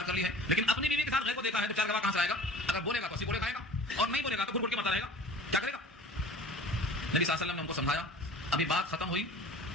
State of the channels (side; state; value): both; normal; correlation 0.43